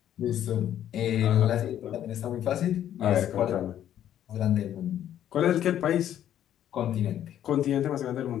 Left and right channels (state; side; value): quieter; right; 10.9 dB